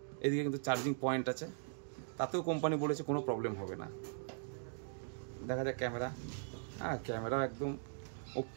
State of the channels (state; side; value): silent; left; digital silence